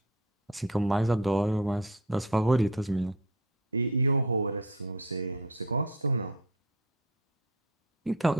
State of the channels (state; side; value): normal; both; correlation 0.34